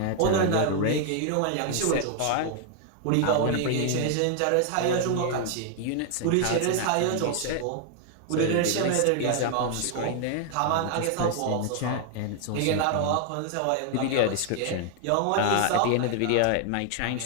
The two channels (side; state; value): both; different; correlation 0.00